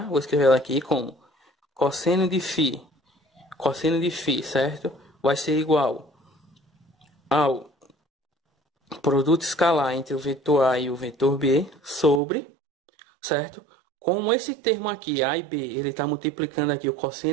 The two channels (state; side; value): drops out; left; at 12.2 s